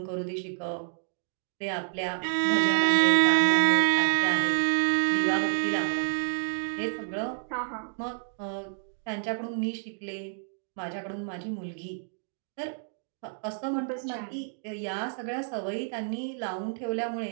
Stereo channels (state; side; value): silent; left; digital silence